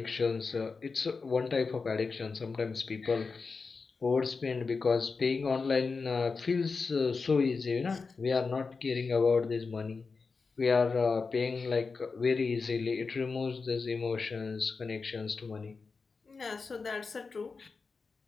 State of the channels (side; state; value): right; quieter; 4.6 dB